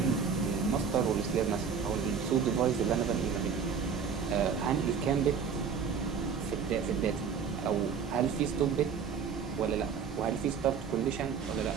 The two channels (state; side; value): quieter; left; 6.4 dB